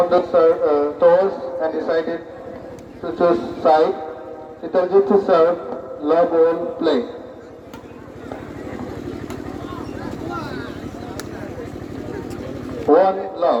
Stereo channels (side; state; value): both; identical; correlation 1.00